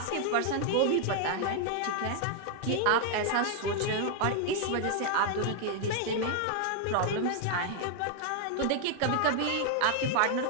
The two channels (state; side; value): different; both; correlation 0.00